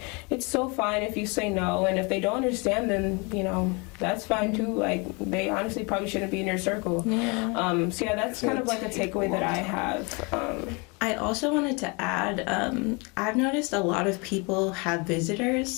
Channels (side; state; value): right; quieter; 30.1 dB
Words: it's so fine if you say no, and if they don't understand, then you know that's fine too. Like they honestly probably shouldn't be in your circle. Yeah. So yeah, that's kind of like a takeaway that I have. I also wanted to add, I've noticed a lot of people have